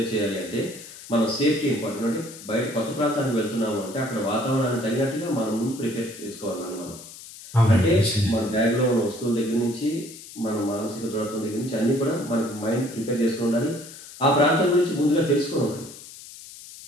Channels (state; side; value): noise; left; hiss, 16 dB below the sound